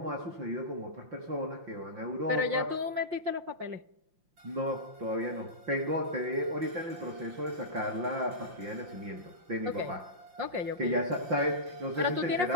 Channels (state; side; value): late; left; 5.6 ms